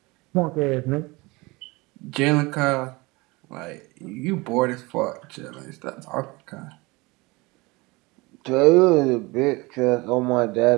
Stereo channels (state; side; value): quieter; left; 24.0 dB